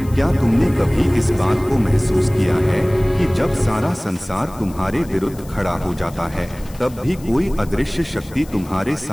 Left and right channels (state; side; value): noise; left; hiss, 22 dB below the sound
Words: क्या तुमने कभी इस बात को महसूस किया है कि जब सारा संसार तुम्हारे विरुद्ध खड़ा हो जाता है, तब भी कोई अदृश्य शक्ति तुम्हारे